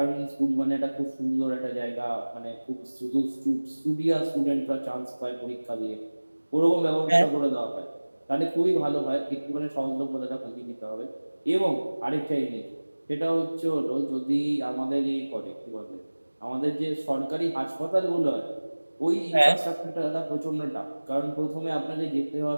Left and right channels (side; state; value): both; inverted; correlation -1.00